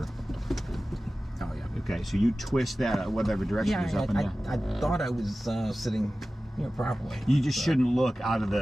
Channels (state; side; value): normal; both; correlation 0.96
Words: Oh yeah. Okay, so you twist that whatever direction is up and down. I thought I was sitting, properly. You just shouldn't look out of